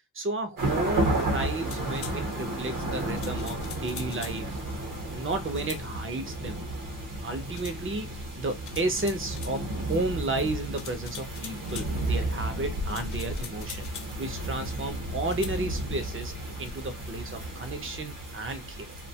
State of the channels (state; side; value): normal; both; correlation 0.36